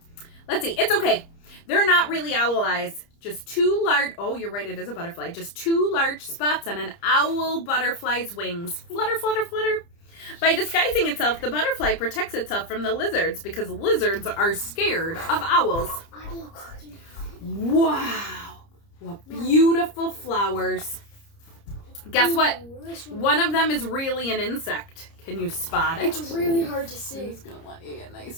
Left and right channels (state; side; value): late; right; 30 ms